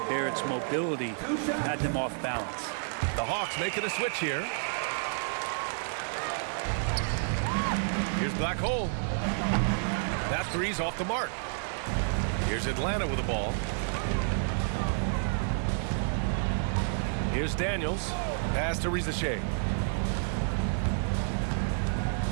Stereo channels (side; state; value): left; silent; digital silence